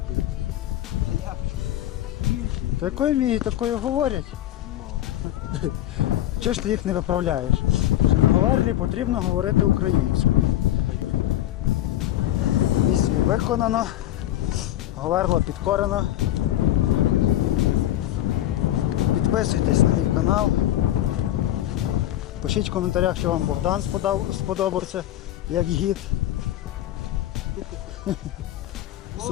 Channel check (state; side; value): quieter; right; 13.3 dB